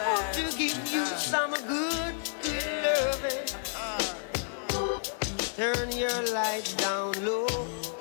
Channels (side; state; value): right; silent; 55 dB below the other